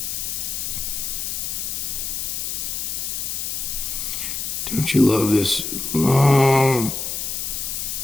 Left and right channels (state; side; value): noise; left; hiss, 3 dB below the sound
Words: Don't you love this long